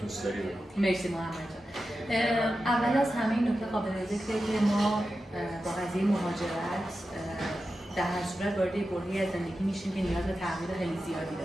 داری بگو. مرسی محمد جان. اول از همه این نکته قابل ذکره که ما با قضیه مهاجرت در هر صورت وارد برهه‌ای از زندگی میشیم که نیاز به تغییر خیلی زیادی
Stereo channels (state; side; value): normal; both; correlation 0.91